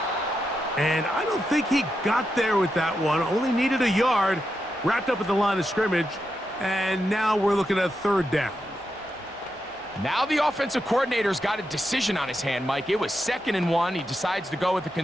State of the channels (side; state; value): both; normal; correlation 0.86